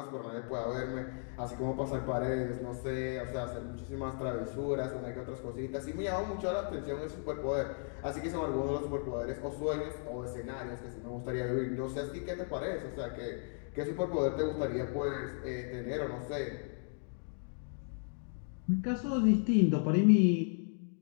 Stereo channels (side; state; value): right; silent; 54 dB below the other